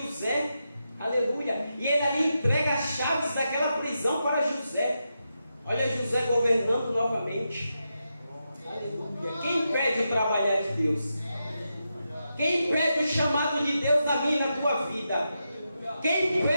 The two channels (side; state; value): both; inverted; correlation -0.87